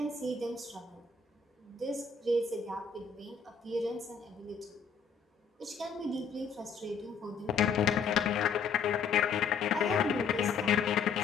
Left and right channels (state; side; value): quieter; right; 5.8 dB